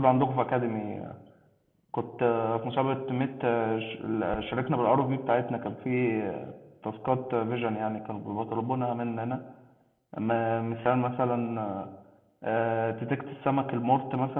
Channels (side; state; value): both; identical; correlation 1.00